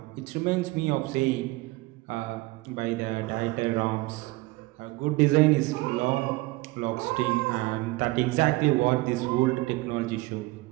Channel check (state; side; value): quieter; left; 21.7 dB